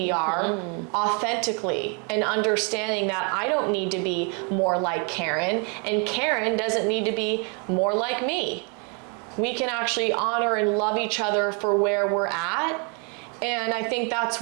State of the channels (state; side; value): quieter; left; 35.8 dB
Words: are authentically, and understanding that I don't need to be more like Karen, and Karen doesn't need to be more like me. We can actually honor and love each other for where we're at. And I think that's